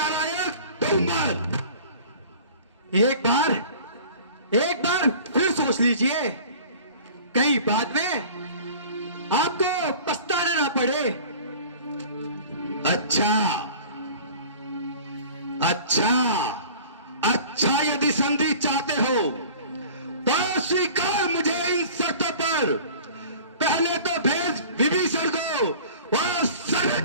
डूब मर। एक बार फिर सोच लीजिए, कहीं बाद में आपको पछताना ना पड़े। अच्छा, यदि संधि चाहते हो तो स्वीकार मुझे इन शर्तों पर। पहले तो भेज विभीषण को और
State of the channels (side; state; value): both; inverted; correlation -0.44